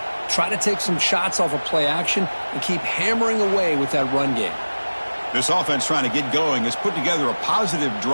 try to take some shots off of play action, and keep hammering away with that run game. This offense trying to get going has put together a positive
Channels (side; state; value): both; inverted; correlation -1.00